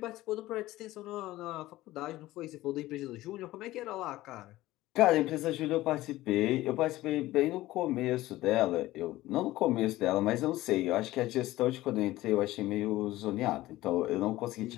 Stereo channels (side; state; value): right; quieter; 16.8 dB